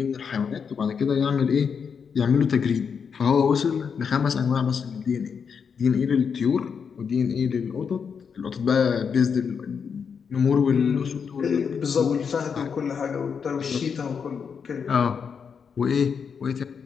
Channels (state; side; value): quieter; right; 6.5 dB